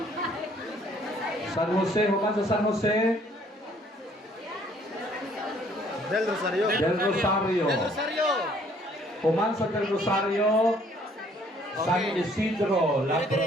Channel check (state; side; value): normal; both; correlation 0.61